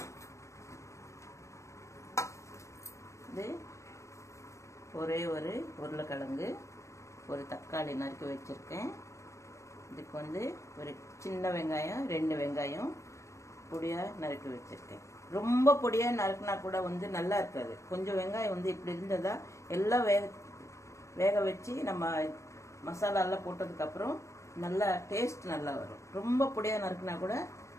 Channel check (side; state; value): right; late; 0.14 ms